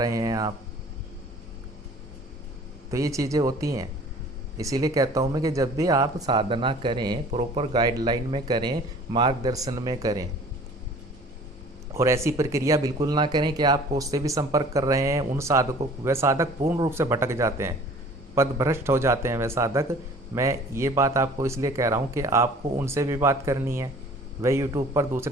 हैं आप, तो ये चीज़ें होती हैं। इसीलिए कहता हूँ मैं कि जब भी आप साधना करें प्रॉपर गाइडलाइन में करें, मार्गदर्शन में करें, और ऐसी प्रक्रिया बिल्कुल ना करें कि आप उससे भी संपर्क कर रहे हैं उन साधकों, वह साधक पूर्ण रूप से भटक जाते हैं, पदभ्रष्ट हो जाते हैं वह साधक। मैं ये बात आपको इसलिए कह रहा हूँ कि आपको उनसे भी बात करनी है। वह यूट्यूब पर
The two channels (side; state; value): both; normal; correlation 0.49